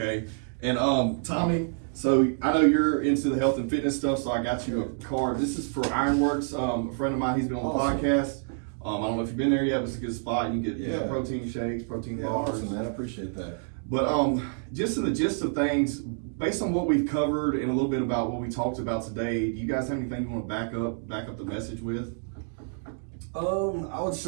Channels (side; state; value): left; silent; digital silence